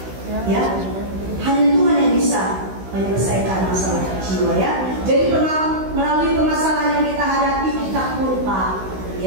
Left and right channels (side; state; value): left; late; 16 ms